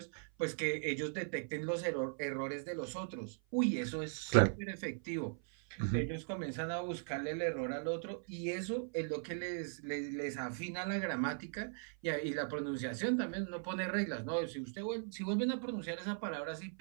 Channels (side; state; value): left; silent; 52 dB below the other